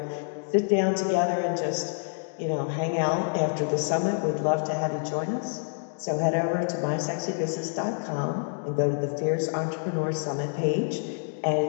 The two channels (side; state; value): right; silent; digital silence